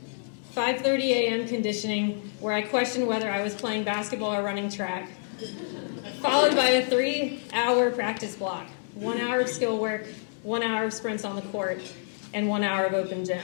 5:30 a.m. conditioning, where I questioned whether I was playing basketball or running track, followed by a 3-hour practice block, 1 hour of skill work, 1 hour of sprints on the court, and 1 hour of open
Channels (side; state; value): right; silent; digital silence